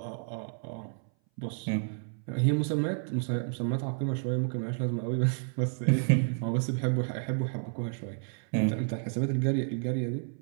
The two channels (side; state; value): left; silent; 57 dB below the other